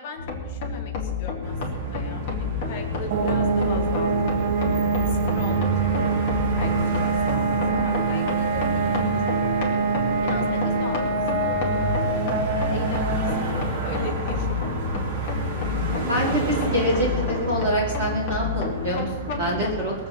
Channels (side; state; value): both; inverted; correlation -0.36